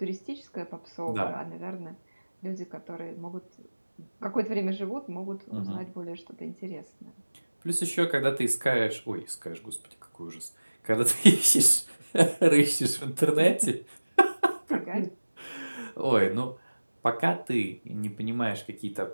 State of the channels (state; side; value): inverted; both; correlation -1.00